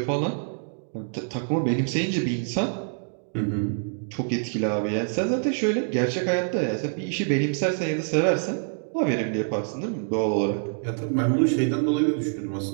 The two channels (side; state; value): left; silent; 61 dB below the other